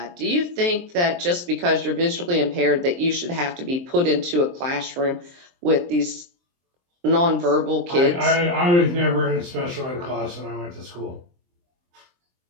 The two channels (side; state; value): left; late; 23 ms